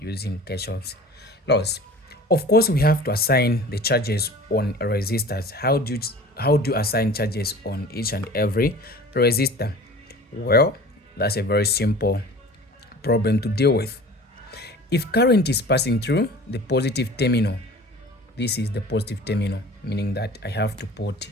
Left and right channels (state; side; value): normal; both; correlation 0.42